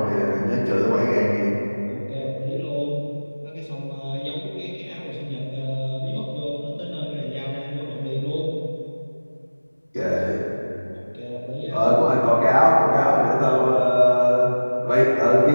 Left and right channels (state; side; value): inverted; both; correlation -1.00